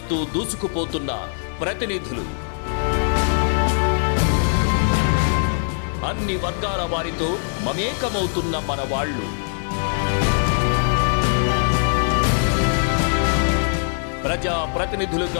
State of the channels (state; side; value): silent; right; digital silence